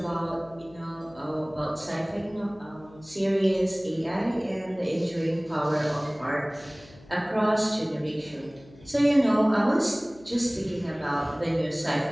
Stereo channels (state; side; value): noise; left; hum, 23 dB below the sound